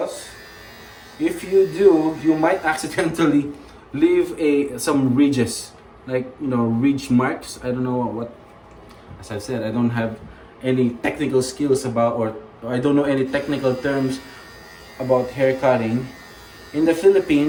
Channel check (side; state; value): both; identical; correlation 1.00